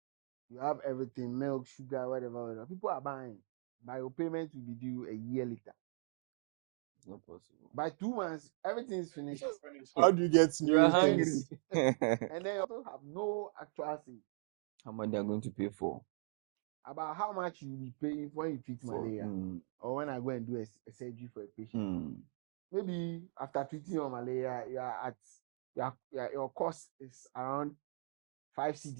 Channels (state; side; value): silent; left; 51 dB below the other